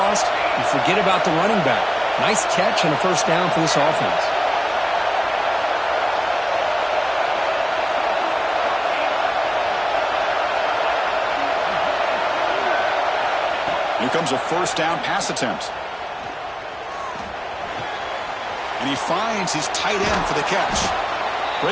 You forget about the running back. Nice catch and a 1st down for this offense. Here comes a 1st down pass attempt. And he finds his tight end for the catch.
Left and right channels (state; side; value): identical; both; correlation 1.00